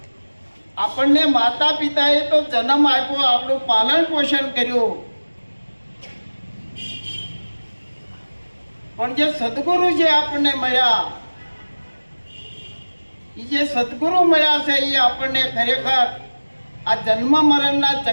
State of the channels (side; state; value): both; inverted; correlation -1.00